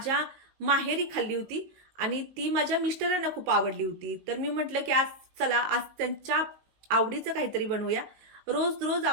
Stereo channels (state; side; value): late; left; 19 ms